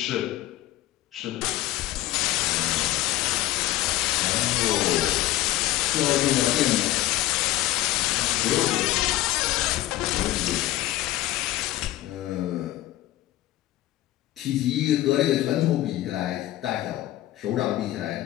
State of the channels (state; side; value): quieter; right; 15.3 dB